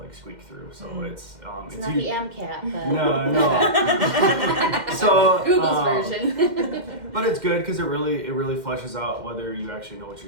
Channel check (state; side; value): late; left; 2.1 ms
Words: squeak through. So it's not the MCAT, but no. So Google's version. But it's good because it really fleshes out whether you actually know what